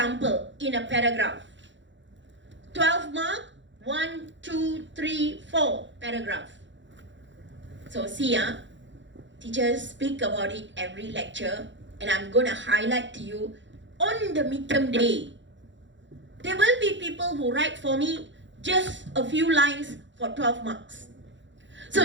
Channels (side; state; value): left; late; 0.54 ms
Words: in a paragraph. 12 mark, 1, 2, 3, 4 paragraph. So see, teachers speak about it every lecture, and I'm going to highlight to you on the midterm day. There will be people who write for me just a few lines for 12 marks.